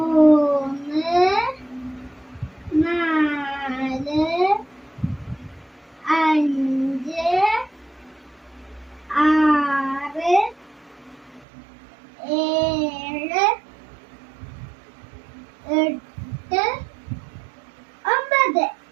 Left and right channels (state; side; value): drops out; left; at 11.5 s